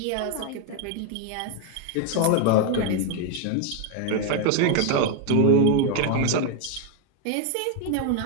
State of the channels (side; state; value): both; different; correlation 0.01